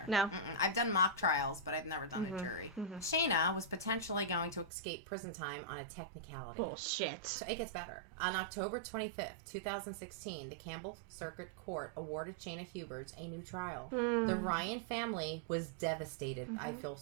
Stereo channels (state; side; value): drops out; left; at 4.7 s